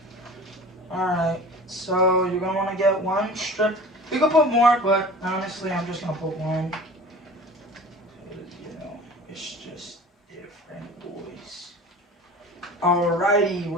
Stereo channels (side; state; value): both; normal; correlation 0.40